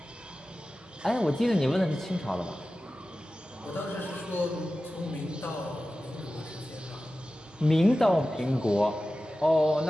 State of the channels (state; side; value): normal; both; correlation 0.95